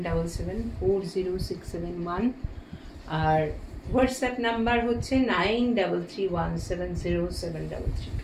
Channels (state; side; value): identical; both; correlation 1.00